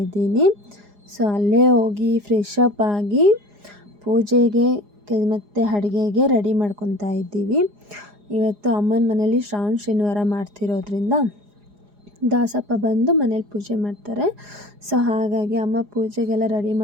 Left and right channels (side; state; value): left; late; 4.9 ms